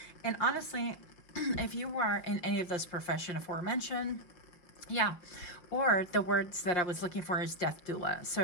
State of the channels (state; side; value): late; right; 5.3 ms